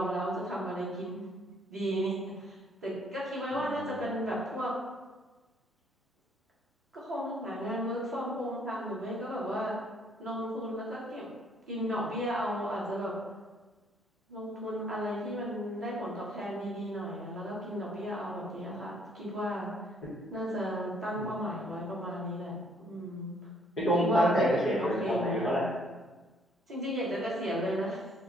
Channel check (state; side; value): normal; both; correlation 0.64